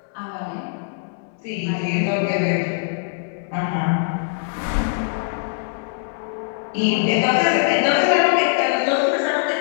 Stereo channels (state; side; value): silent; right; 64 dB below the other